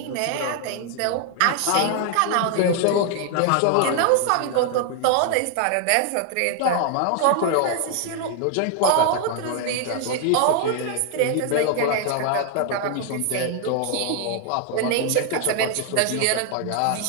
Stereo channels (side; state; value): both; different; correlation 0.00